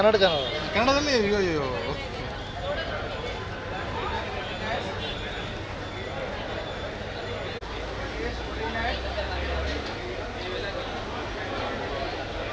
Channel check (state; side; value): identical; both; correlation 1.00